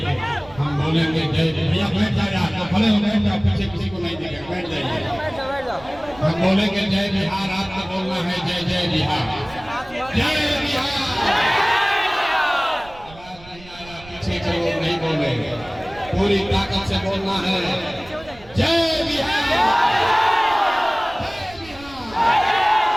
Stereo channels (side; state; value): right; noise; rumble, 21 dB below the sound